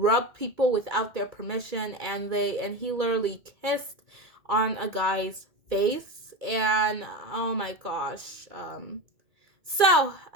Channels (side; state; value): left; late; 2.3 ms